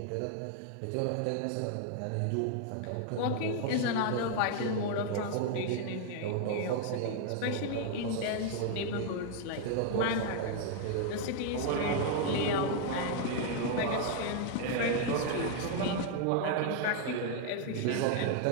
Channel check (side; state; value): both; different; correlation 0.00